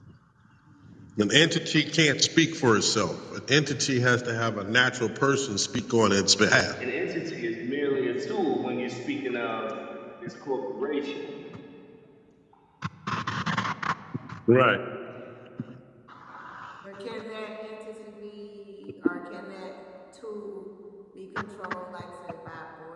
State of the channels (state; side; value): identical; both; correlation 1.00